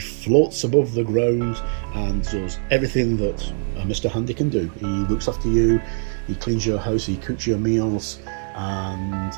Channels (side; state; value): left; silent; 57 dB below the other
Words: above the ground and does everything that Mr. Handy can do. He looks after you, he cleans your house, he cooks your meals, and